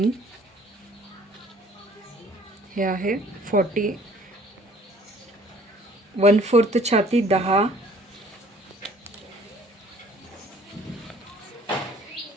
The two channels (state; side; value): normal; both; correlation 0.55